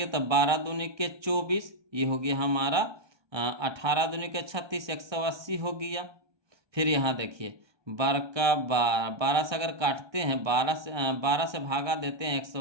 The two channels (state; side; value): late; left; 1.2 ms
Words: तब 12 दूनी के 24, ये हो गया हमारा 18 दूनी के 36, 180 हो गया। फिर यहाँ देखिए 12 का 12 से अगर काटते हैं, 12 से भागा देते हैं